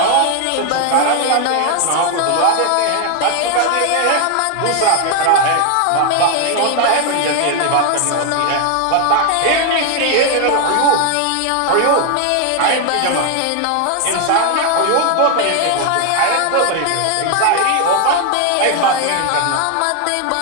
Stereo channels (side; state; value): both; different; correlation 0.01